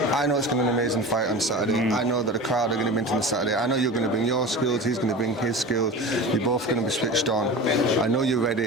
I know it's going to be an amazing fight on Saturday. I know that the crowd are going to be into the Saturday. I know you're going to bring your skills. He's going to bring his skills. You're both going to be switched on. I know you're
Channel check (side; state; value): both; normal; correlation 0.32